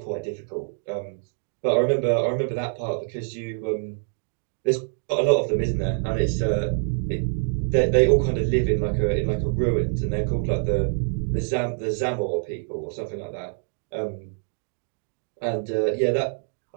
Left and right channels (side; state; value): left; silent; digital silence